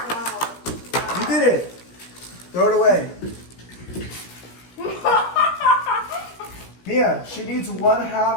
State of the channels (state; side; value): late; right; 17 ms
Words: You did it. Throw it away. Mia, she needs